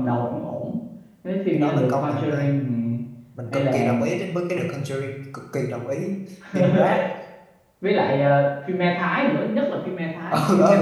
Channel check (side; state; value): both; identical; correlation 1.00